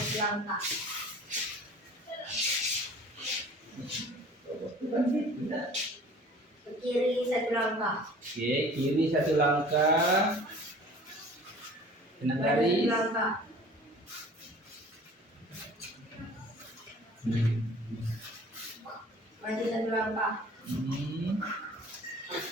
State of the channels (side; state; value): both; normal; correlation 0.47